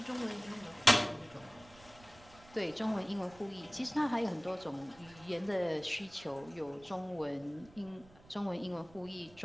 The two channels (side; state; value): right; noise; rumble, 23 dB below the sound